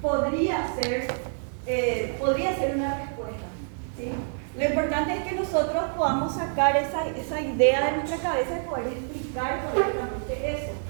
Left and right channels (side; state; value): left; silent; digital silence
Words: podría ser una respuesta, ¿sí? Lo importante es que nosotros podamos sacar esa idea de nuestra cabeza y poder explicar correctamente eso,